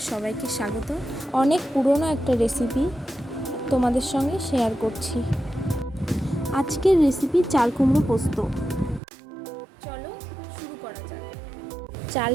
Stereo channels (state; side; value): drops out; left; at 9.0 s